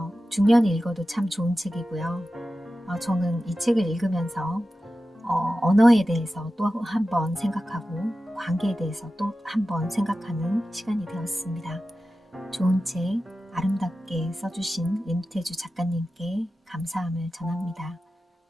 중년이 읽어도 참 좋은 책이고요. 저는 이 책을 읽으면서 언어에 대해서 또 한 번 생각하고 관계에 대해서 또 한 번 생각하는 시간이 되었습니다. 좋은 책 아름답게 써주신 임태주 작가님께 감사함을 전합니다.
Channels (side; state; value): both; normal; correlation 0.94